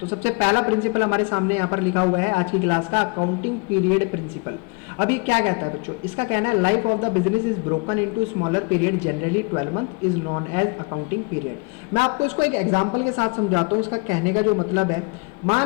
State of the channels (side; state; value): right; quieter; 31.3 dB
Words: सबसे पहला प्रिंसिपल हमारे सामने यहाँ पर लिखा हुआ है आज की क्लास का, अकाउंटिंग पीरियड प्रिंसिपल। अब ये क्या कहता है बच्चों? इसका कहना है life of the business is broken into smaller period, generally 12 month is known as accounting period. मैं आपको इसको एक एग्जांपल के साथ समझाता हूँ। इसका कहने का जो मतलब है,